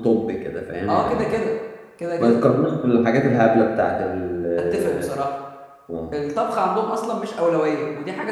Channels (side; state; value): both; identical; correlation 1.00